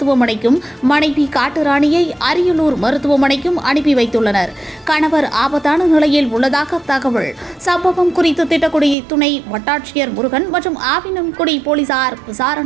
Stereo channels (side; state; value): left; drops out; at 9.0 s